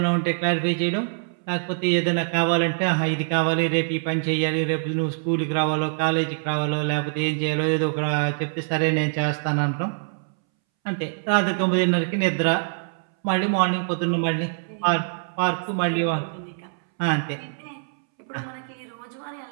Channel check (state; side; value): silent; left; 62 dB below the other